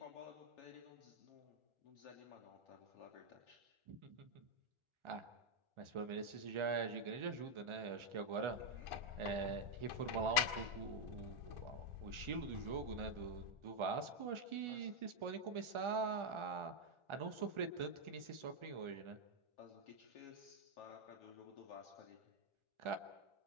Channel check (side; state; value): left; late; 1.4 ms